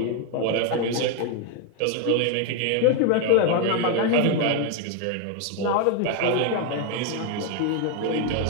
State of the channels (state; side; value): different; both; correlation 0.01